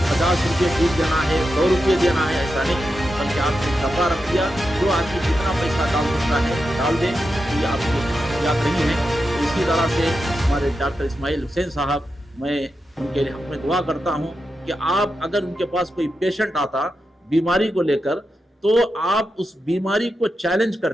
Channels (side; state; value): both; normal; correlation 0.88